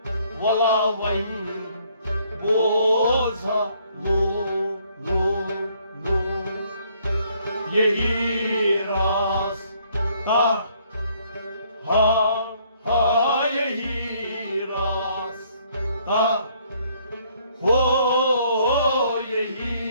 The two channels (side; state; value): both; inverted; correlation -0.66